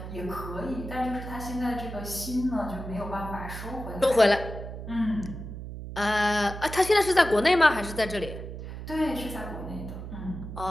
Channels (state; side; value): noise; right; hum, 9 dB below the sound